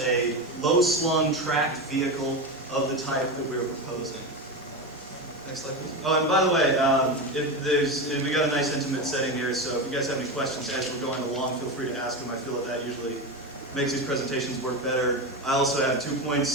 a low-slung tracked vehicle of the type that we're proposing. Next slide, please. Oh, and by the way, we got a nice intimate setting here, so if you guys have any questions as we're going along, feel free to ask them. I feel that usually makes these presentations work better. I also have 2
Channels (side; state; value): both; normal; correlation 0.18